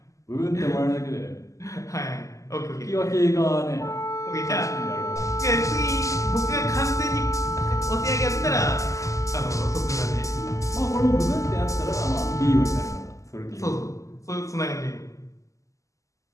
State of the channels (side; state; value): right; late; 0.16 ms